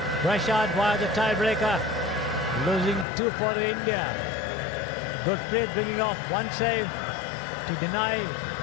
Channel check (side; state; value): right; drops out; at 3.1 s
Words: pressured via the tiebreaker, losing 2-4 to India. Gurpreet bringing off one save to deny